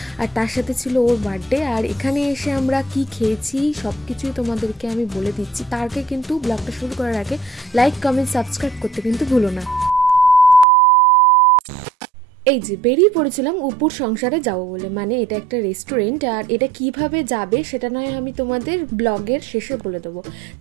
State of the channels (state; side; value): drops out; left; at 10.7 s